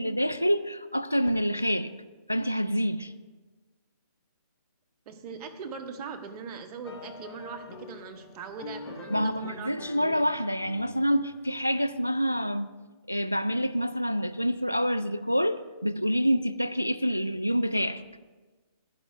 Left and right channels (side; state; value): both; inverted; correlation -0.93